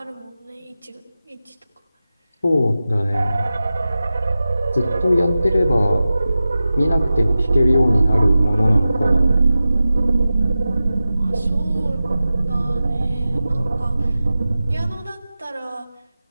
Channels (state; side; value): inverted; both; correlation -0.94